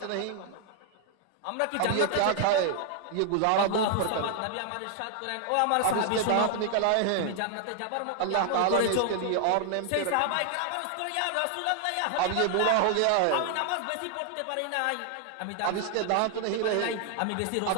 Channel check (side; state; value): both; different; correlation 0.00